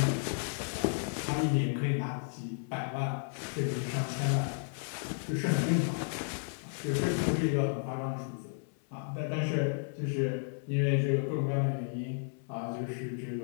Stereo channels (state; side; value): silent; right; 56 dB below the other